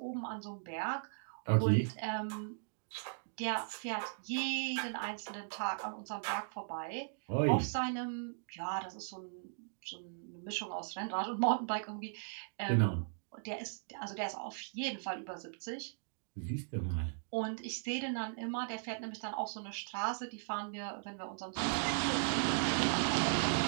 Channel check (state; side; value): silent; left; digital silence